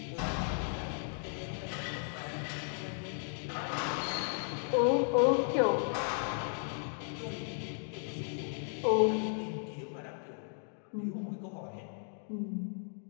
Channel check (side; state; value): right; silent; 54 dB below the other